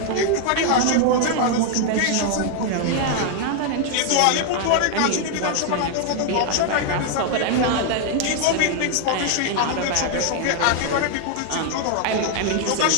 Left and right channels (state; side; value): different; both; correlation 0.00